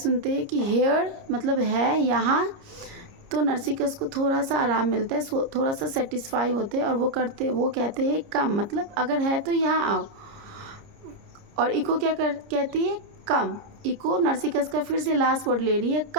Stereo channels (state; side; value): late; left; 30 ms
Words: हैं कि हेयर मतलब है यहाँ, तो नरसिकस को थोड़ा सा आराम मिलता है, थोड़ा सा सेटिस्फाई होते हैं और वो कहते हैं कम मतलब अगर है तो यहाँ आओ। और इको क्या कहती है? कम। इको नरसिकस का फिर से लास्ट वर्ड ले रही है,